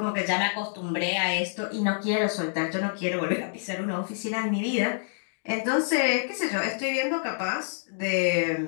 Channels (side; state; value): right; silent; digital silence